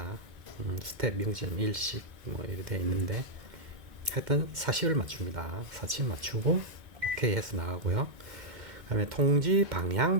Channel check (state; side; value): late; left; 2.1 ms